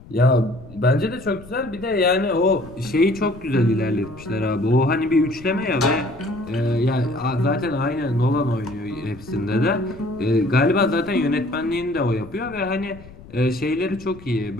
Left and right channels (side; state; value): left; noise; rumble, 19 dB below the sound